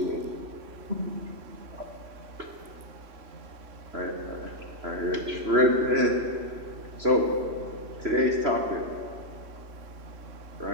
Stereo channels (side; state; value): left; late; 3.0 ms